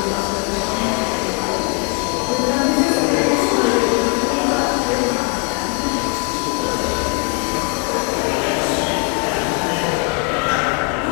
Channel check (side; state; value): right; quieter; 32.7 dB